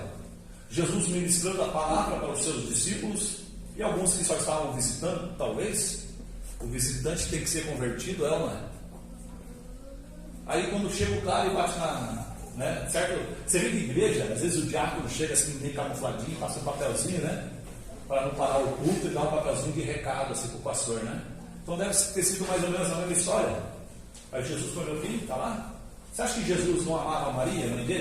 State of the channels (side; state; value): both; identical; correlation 1.00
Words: Jesus ministrando a palavra para os seus discípulos, e alguns que só estavam visitando, talvez. O visitante tem que ser convertido, é ou não é? Aí quando chega o cara e bate né? Certo? Você vê na igreja, às vezes o diácono chega assim, meio camufladinho, passa um papelzinho, né? Para não parar o culto e dar um papelzinho de recado assim para o pastor, né? Então deve ter sido mais ou menos a mesma história. Aí Jesus foi meu filho, está lá. Você acha que Jesus não amava Maria, mãe